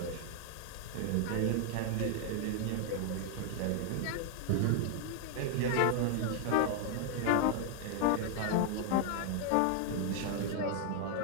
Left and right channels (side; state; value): both; different; correlation 0.00